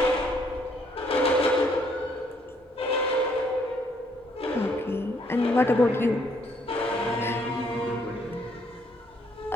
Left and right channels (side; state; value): both; normal; correlation 0.68